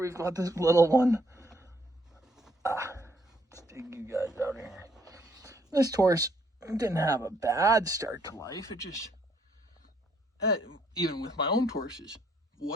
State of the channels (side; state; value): both; normal; correlation 0.69